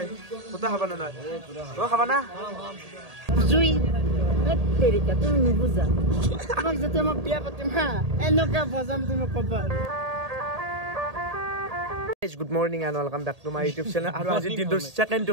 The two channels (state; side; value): late; left; 1.8 ms